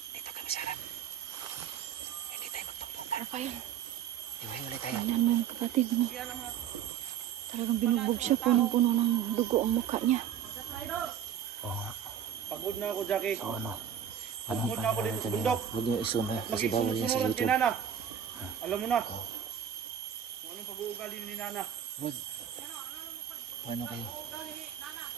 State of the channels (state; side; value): quieter; left; 9.1 dB